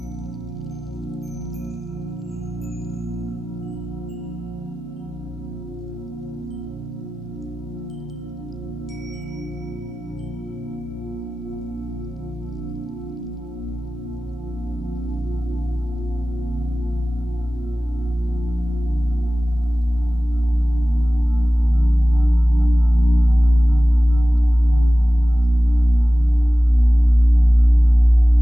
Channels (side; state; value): both; normal; correlation 0.96